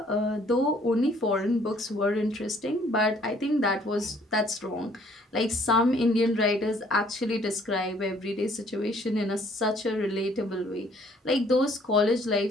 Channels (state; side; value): normal; both; correlation 0.61